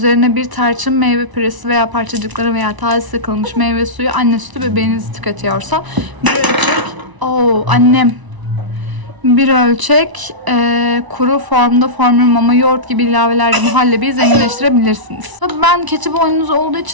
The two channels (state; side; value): late; left; 1.0 ms